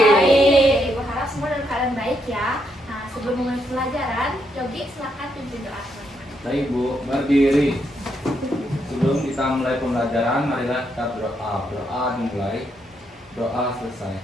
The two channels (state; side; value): normal; both; correlation 0.78